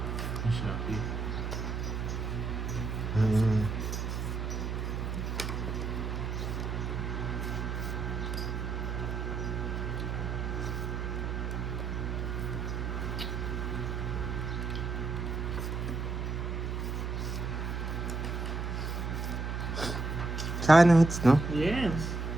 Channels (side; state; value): right; noise; hum, 2 dB below the sound